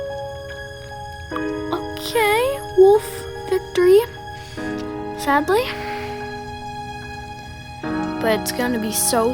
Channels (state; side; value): identical; both; correlation 1.00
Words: Okay, Wolf victory. Sadly. But it's gonna be so